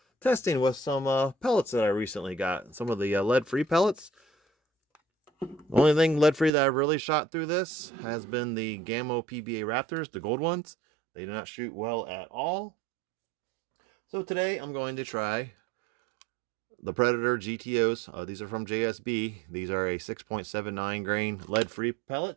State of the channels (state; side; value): drops out; left; at 6.5 s